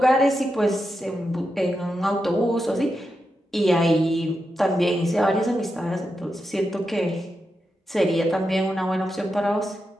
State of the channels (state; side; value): normal; both; correlation 0.87